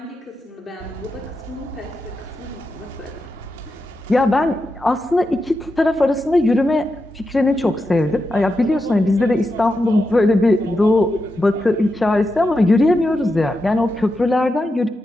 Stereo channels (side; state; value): both; normal; correlation 0.88